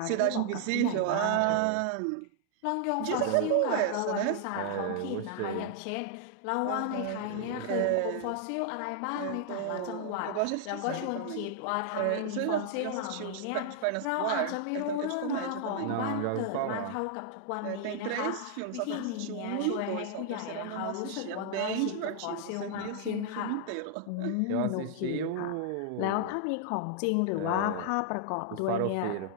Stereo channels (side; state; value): both; different; correlation 0.00